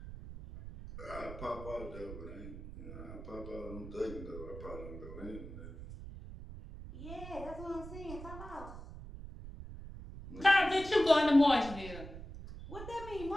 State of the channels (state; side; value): noise; right; rumble, 11 dB below the sound